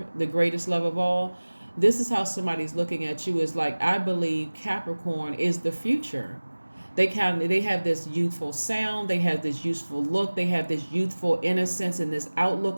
the greatest love of all. This is how somebody's looking at you, is like, I believe Capricorn is the future. They have this youthful sound, they have this youthful look, they have this youthful innocence and this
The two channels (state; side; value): inverted; both; correlation -1.00